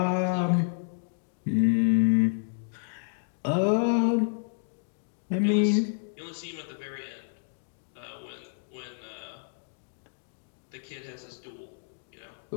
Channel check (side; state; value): right; silent; digital silence